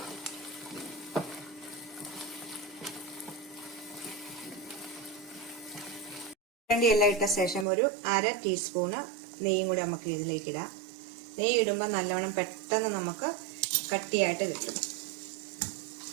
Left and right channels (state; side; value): drops out; left; at 7.7 s